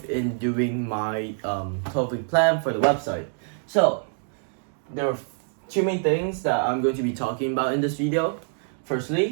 in doing my 12-week plan for the website. So, there are two main things that I'm going to be talking about in this video.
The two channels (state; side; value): silent; left; 57 dB below the other